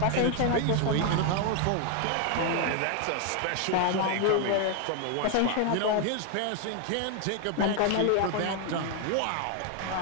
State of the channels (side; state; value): both; different; correlation 0.01